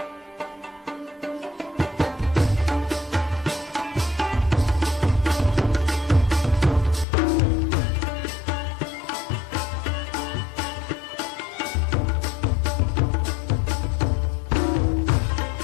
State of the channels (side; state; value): right; drops out; at 7.1 s